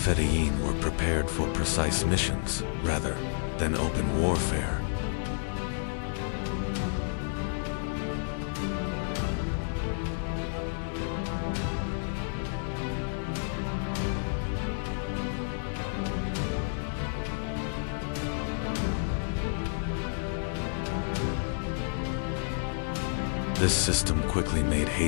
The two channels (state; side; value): silent; right; digital silence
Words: were prepared for precise missions rather than open warfare. This system quickly made